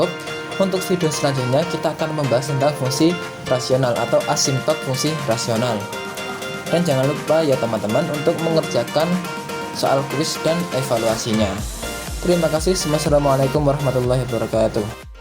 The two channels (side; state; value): both; identical; correlation 1.00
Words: Untuk video selanjutnya kita akan membahas tentang fungsi rasional atau asimptot fungsi rasional. Dan jangan lupa ya teman-teman untuk mengerjakan soal kuis dan evaluasinya. Terima kasih. Wassalamualaikum warahmatullahi wabarakatuh.